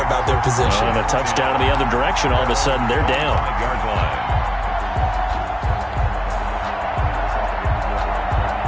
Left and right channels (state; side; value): identical; both; correlation 1.00